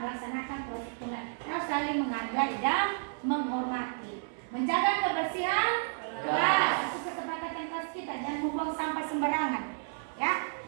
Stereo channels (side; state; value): left; silent; 57 dB below the other